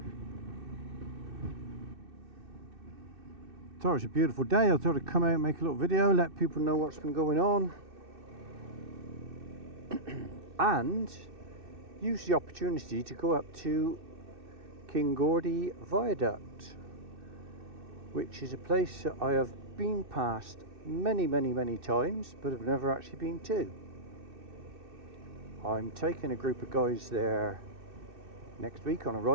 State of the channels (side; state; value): left; late; 2.6 ms